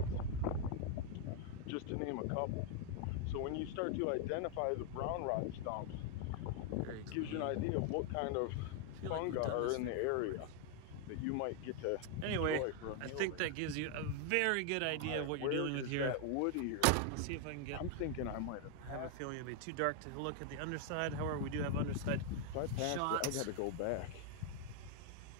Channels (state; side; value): different; both; correlation 0.00